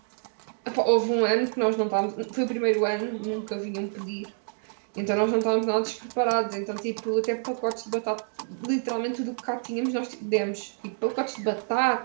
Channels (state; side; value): silent; left; digital silence